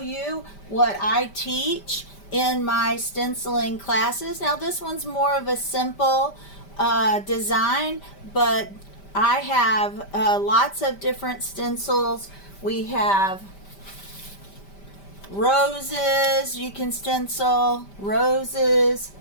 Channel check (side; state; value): right; late; 5.1 ms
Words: you what I teach in my stenciling classes. Now this one's more of a simple design, but I have lots of different stencils. We have roses. You can stencil roses.